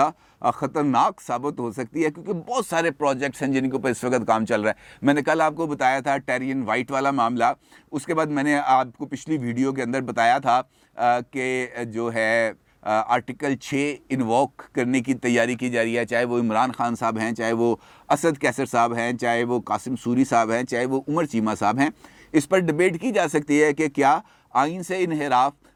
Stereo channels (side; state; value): both; identical; correlation 1.00